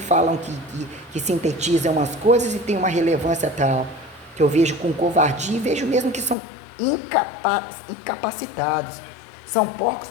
que sintetizam as coisas e tem uma relevância tal, que eu vejo com covardia e vejo mesmo que são incapacitados. São porcos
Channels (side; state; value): right; drops out; at 6.4 s